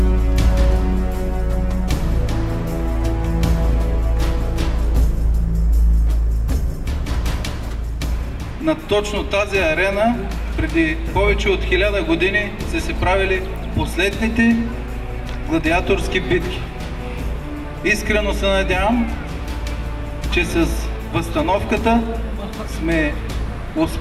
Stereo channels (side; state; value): both; identical; correlation 1.00